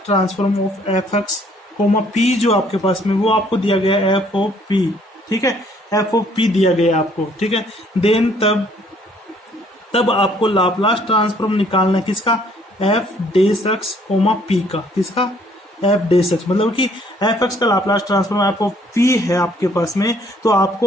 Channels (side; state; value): both; normal; correlation 0.62